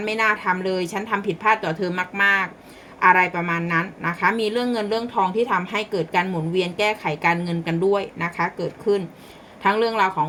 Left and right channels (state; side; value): identical; both; correlation 1.00